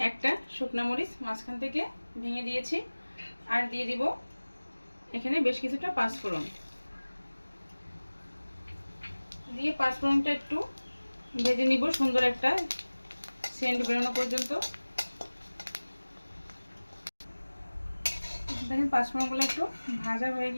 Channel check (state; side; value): inverted; both; correlation -1.00